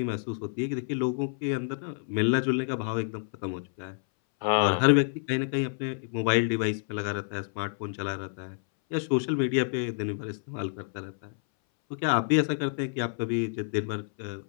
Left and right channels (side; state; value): right; silent; 59 dB below the other